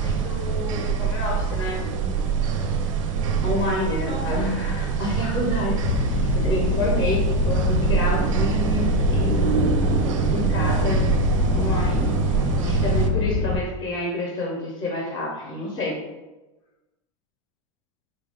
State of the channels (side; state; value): both; normal; correlation 0.08